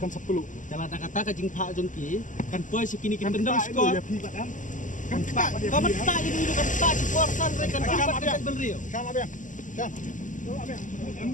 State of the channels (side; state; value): right; late; 0.37 ms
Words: 10 kalau ada kata ka jing pa jong ki kan poi sekini kin tendang skor ya pi kan pa kamu tak ini kan tak di porsan rekan kan benrio Kam abang. Kam. Abang. Am